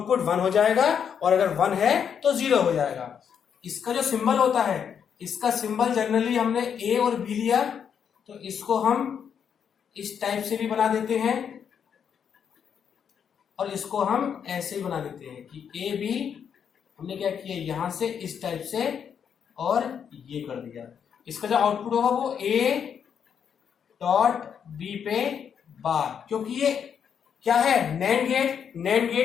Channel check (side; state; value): right; quieter; 7.7 dB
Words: 1 हो जाएगा, और अगर 1 है तो 0 हो जाएगा। इसका जो सिंबल होता है, इसका सिंबल जनरली हमने ए और बी लिया, तो इसको हम इस टाइप से भी बना देते हैं और इसको हम ऐसे ही बना देते हैं कि ए बी हमने क्या किया, यहां से इस टाइप से और ये कर दिया। इसका जो आउटपुट होगा वो ए डॉट बी पे बार, क्योंकि ये क्या है, नैंड